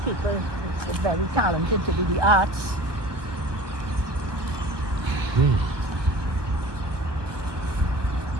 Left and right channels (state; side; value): late; left; 1.0 ms